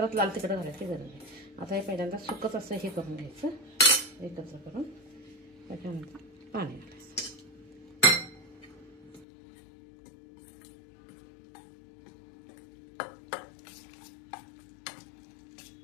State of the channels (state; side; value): drops out; right; at 9.2 s